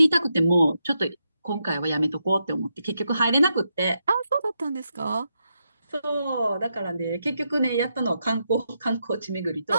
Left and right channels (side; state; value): both; inverted; correlation -0.83